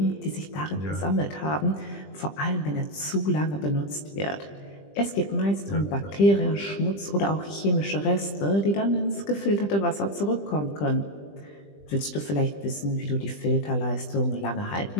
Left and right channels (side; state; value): right; late; 20 ms